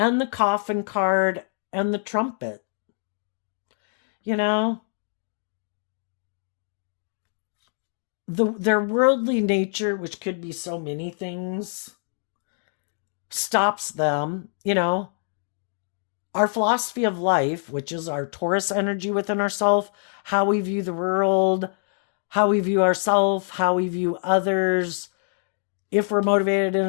the coffin card and the trumpet. their worldly nature, which could be so many things, stops them. Our philosophy of life, which is our Taurus energy within ourselves, how we view the world, how we view ourselves, how we view others, if we're motivated and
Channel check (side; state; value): right; silent; digital silence